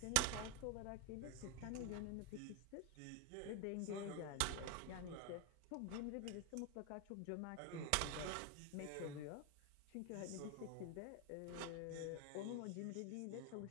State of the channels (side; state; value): both; different; correlation 0.01